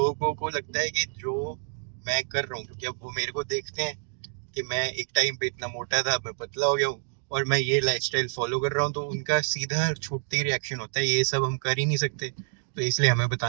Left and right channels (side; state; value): left; silent; digital silence